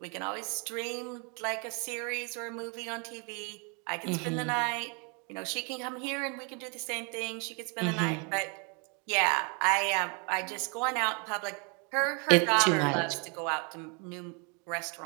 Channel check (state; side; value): quieter; left; 34.9 dB